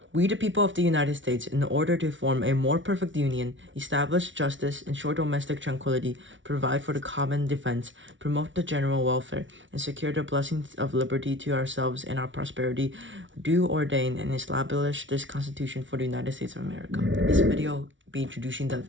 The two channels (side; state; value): left; late; 0.56 ms